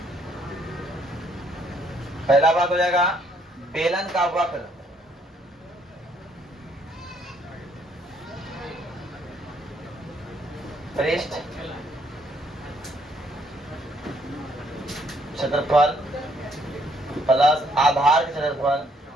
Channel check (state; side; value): normal; both; correlation 0.68